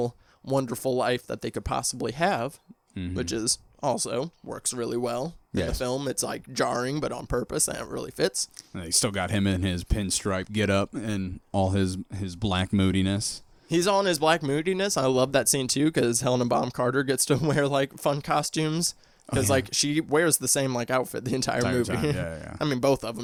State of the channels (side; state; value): both; identical; correlation 1.00